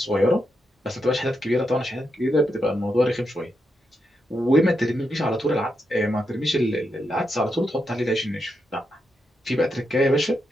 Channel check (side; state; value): both; normal; correlation 0.84